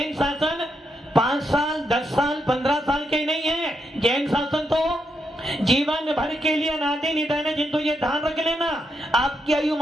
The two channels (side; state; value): both; normal; correlation 0.81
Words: शासन 5 साल 10 साल 15 साल के नहीं है। जैन शासन तो जीवन भर के लिए अनादि निधन है। किंतु ये ध्यान रख लेना, आपकी आयु